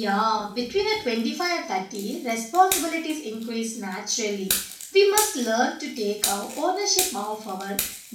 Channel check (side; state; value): both; identical; correlation 1.00